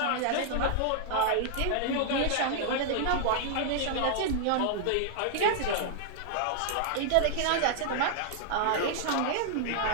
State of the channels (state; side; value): different; both; correlation -0.01